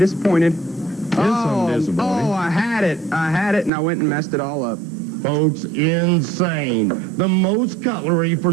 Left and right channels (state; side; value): drops out; left; at 3.7 s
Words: I'm disappointed. Oh, I had it, and I went and messed it all up. Folks, insane. The most cutlery for